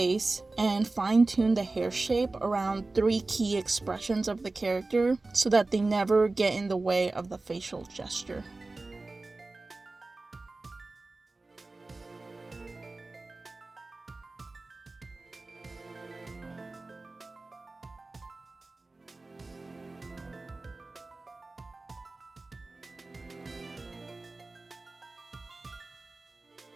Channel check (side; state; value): left; quieter; 3.3 dB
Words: and fine-tune the hair shape around 3 key expressions of the character so that they never get in the way of the facial gesture.